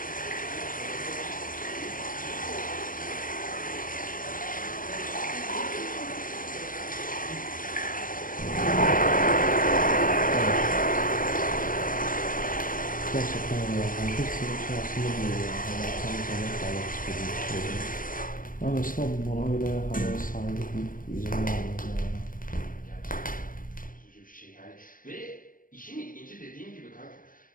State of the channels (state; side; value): late; right; 0.40 ms